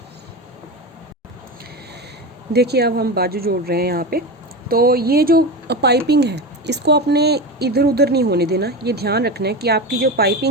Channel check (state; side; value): normal; both; correlation 0.23